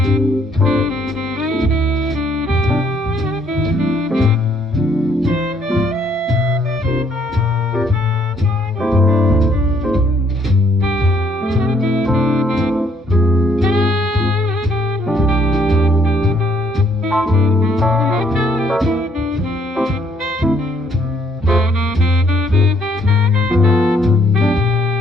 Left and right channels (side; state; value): both; normal; correlation 0.67